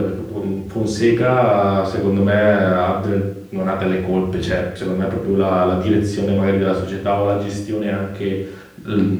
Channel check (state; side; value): identical; both; correlation 1.00